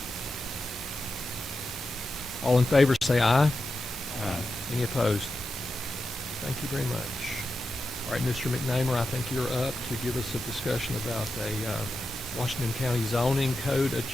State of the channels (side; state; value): both; normal; correlation 0.89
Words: All in favor say aye. Any opposed? Thank you very much. All right, Mr. McNamer, I think you're up to give us a discussion about a Washington County zoning code